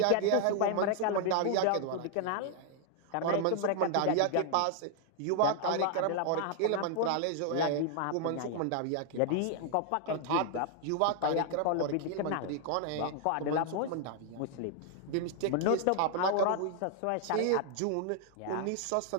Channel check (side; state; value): both; different; correlation 0.00